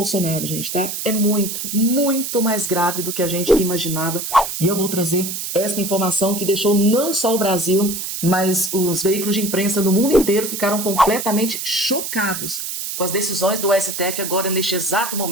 gente, tá? É muito mais grave do que a gente imaginava. E eu vou trazer esta informação que deixou não só o Brasil, mas os veículos de imprensa do mundo inteiro ficaram completamente chocados com as decisões do STF agora, neste exato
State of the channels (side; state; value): right; noise; hiss, 5 dB below the sound